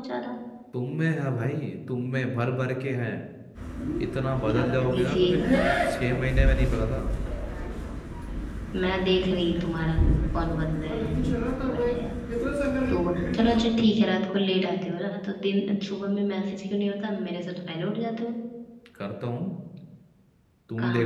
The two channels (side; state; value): both; identical; correlation 1.00